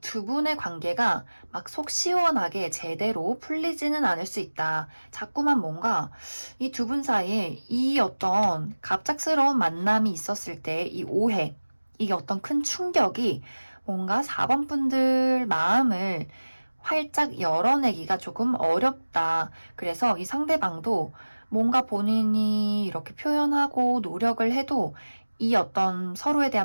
분의 관계가 막 속 시원하게 제대로 풀리지는 않을 수 있다. 자꾸만 뭔가 이 두 분 사이에 이 어떤 갑작스러운 만남이 있었을 때 이 오해, 이게 어떤 큰 충격이 뭔가 4번 분들 마음을 활짝 열어내기가 조금 어렵다. 그래서 이 상대방도 뭔가 본인이 이렇게 표현하고 노력을 해도 이 어떤 서로에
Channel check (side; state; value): both; inverted; correlation -1.00